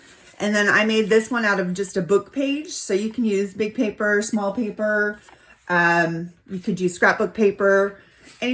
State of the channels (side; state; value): both; identical; correlation 1.00